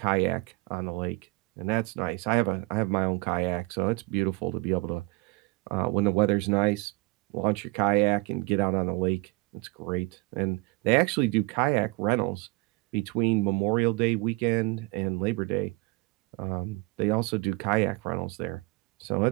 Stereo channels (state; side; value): quieter; left; 25.3 dB